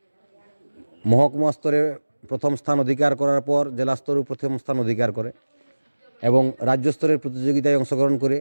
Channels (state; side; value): inverted; both; correlation -1.00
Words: মহকুমা স্তরে প্রথম স্থান অধিকার করার পর জেলা স্তরেও প্রথম স্থান অধিকার করে এবং রাজ্য স্তরের প্রতিযোগিতায় অংশগ্রহণ করে